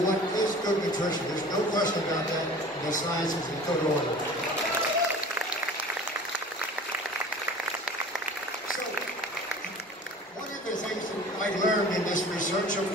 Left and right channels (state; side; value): normal; both; correlation 0.42